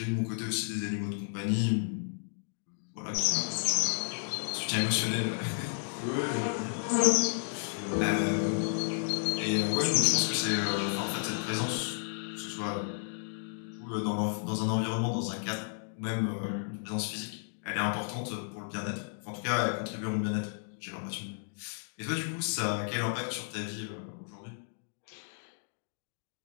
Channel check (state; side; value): silent; right; digital silence